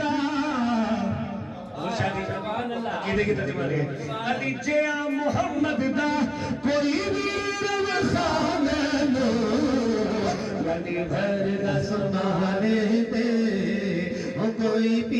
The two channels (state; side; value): identical; both; correlation 1.00